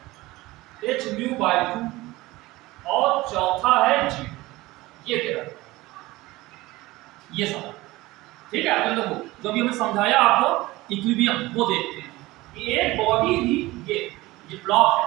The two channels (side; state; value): left; quieter; 19.4 dB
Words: h म्यू बाय 2 और चौथा है g, ये तेरा ये सब, ठीक है। तो देखो जो भी हमने समझाया आपको इक्विलिब्रियम वो देखते हैं कि एक बॉडी थी, ये ब्लॉक है,